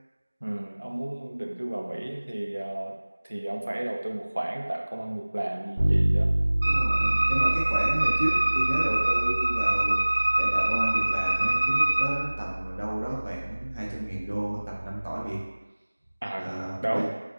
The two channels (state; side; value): inverted; both; correlation -1.00